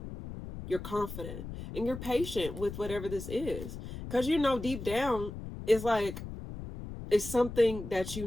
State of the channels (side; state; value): left; noise; rumble, 9 dB below the sound